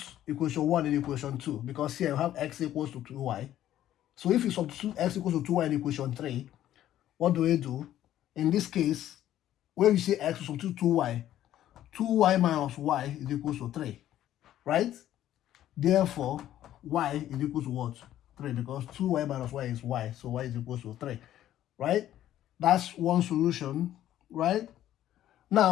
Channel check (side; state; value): right; quieter; 12.4 dB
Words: equation 1 in equation 2, because here we have x equals to 2y. So if you substitute x equals to 2y in equation 3, what do we do? In this case, when we say x, we substitute 2y. 2y minus y is equal to 3, right? Therefore, y is equal to what? 3, because 2y minus y is y, so y is equal to 3, right? That's one solution, right?